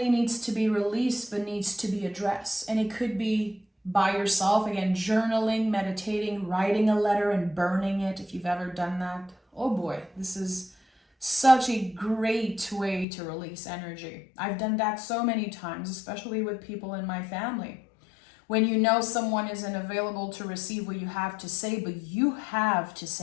needs to be released, but needs to be addressed. And it could be by yourself, again, journaling, meditating, writing a letter and burning it, if you've ever done that. Oh boy, this is such a great way to release energy. I've done that so many times, especially with people in my family. When you know someone isn't available to receive what you have to say, but you have to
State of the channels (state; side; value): drops out; right; at 13.1 s